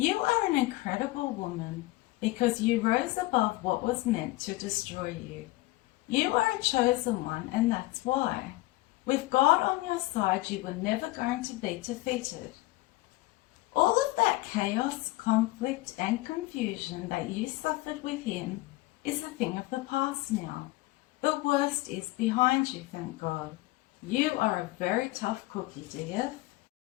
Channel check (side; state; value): right; quieter; 19.8 dB